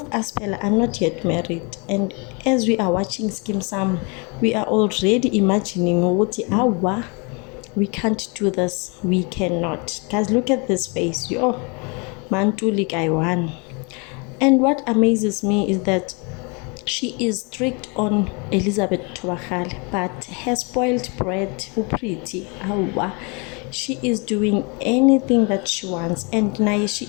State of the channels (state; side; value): quieter; right; 31.9 dB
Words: us Pella are not yet married, and as we are watching Skeem Sam, we are already imagining awa, we can't do this, we cannot. Guys, look at this face. Mantuli guy one. And what amazes me is that she is strict on Elizabeth Thobakgale, but her spoiled brat, Upriti, awa, she is doing anything that she wants, and now she